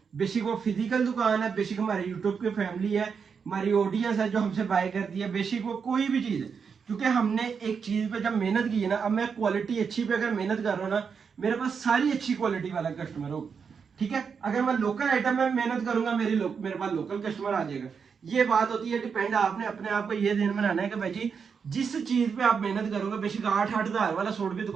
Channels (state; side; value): quieter; left; 6.1 dB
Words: बेसिक वो फिजिकल दुकान है, बेसिक हमारे यूट्यूब की फैमिली है, हमारी ऑडियंस है जो हमसे बाय करती है, बेसिक वो कोई भी चीज़ है। क्योंकि हमने एक चीज़ पे जब मेहनत की है ना, अब मैं क्वालिटी अच्छी पे अगर मेहनत कर रहा हूँ ना, मेरे पास सारी अच्छी क्वालिटी वाला कस्टमर होगा, ठीक है। अगर मैं लोकल आइटम में मेहनत करूंगा, मेरे पास लोकल कस्टमर आ जाएगा। ये बात होती है डिपेंड, आपने अपने आप को ये ध्यान बनाना है कि भाई जी जिस चीज पे आप मेहनत करोगे, बेशक 8-8 हज़ार वाला सूट भी